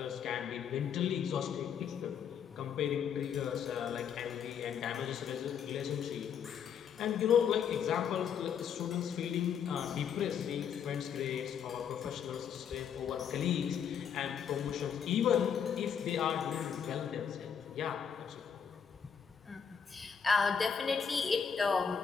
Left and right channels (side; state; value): right; quieter; 7.5 dB